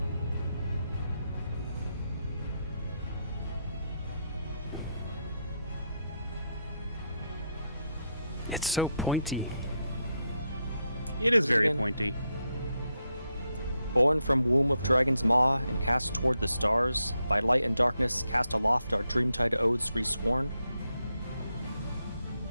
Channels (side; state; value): both; inverted; correlation -0.82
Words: It is very Again. pointy. Born from womb of dragon's maw and cast toward the stars, by light and darkness cast aloft our dreamtide oaths resworn.